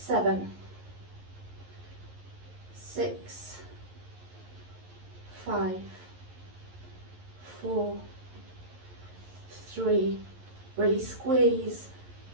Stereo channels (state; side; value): late; left; 11 ms